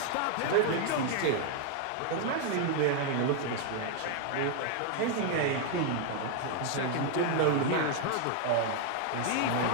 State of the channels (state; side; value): different; both; correlation 0.00